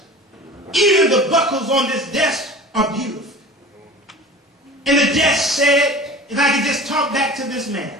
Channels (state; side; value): normal; both; correlation 0.39